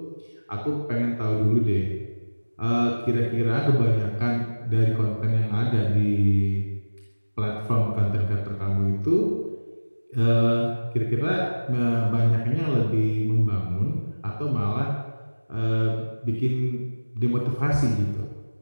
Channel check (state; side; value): inverted; both; correlation -1.00